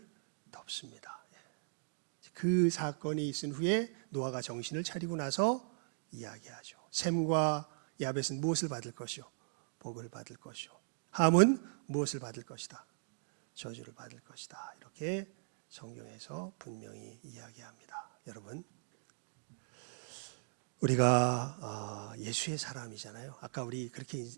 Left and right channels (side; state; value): left; silent; digital silence